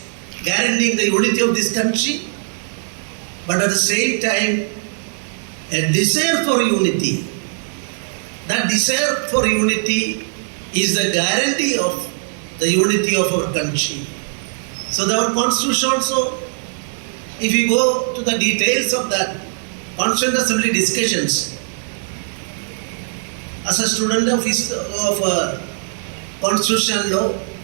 guaranteeing the unity of this country. But at the same time, a desire for unity. That desire for unity is the guarantee of the unity of our country. So our constitution also, if you go to the details of that Constituent Assembly discussions, as a student of constitutional law,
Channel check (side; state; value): left; silent; digital silence